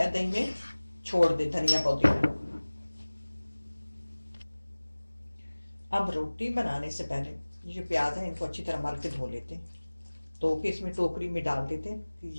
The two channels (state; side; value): inverted; both; correlation -1.00